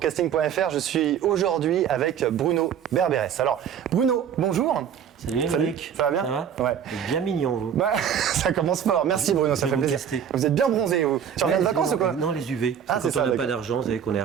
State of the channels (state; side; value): quieter; left; 8.5 dB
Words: Je suis aujourd'hui avec Bruno Berberès. Alors, Bruno, bonjour. Salut Émeric. Ça va bien? Ça va? Ouais. Vous êtes bien mignon, vous. Bah, ça commence fort. Merci Bruno, ça Je fait vais vous plaisir. tester. Vous êtes bien bronzé, vous. Tu reviens de vacances ou quoi? Non, les UV. Ah, c'est Quand ça, on n'a pas d'accord. d'argent, vous savez qu'on est